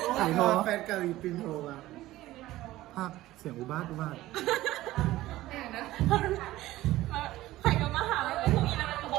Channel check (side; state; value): left; quieter; 16.3 dB